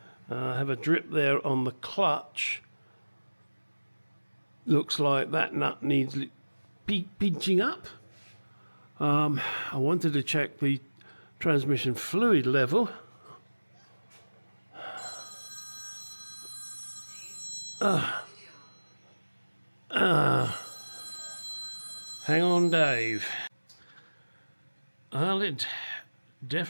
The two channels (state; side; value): inverted; both; correlation -1.00